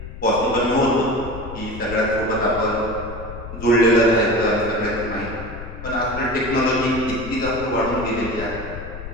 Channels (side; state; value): left; noise; rumble, 11 dB below the sound